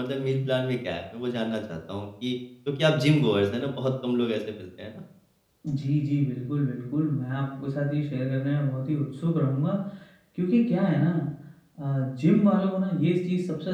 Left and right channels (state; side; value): identical; both; correlation 1.00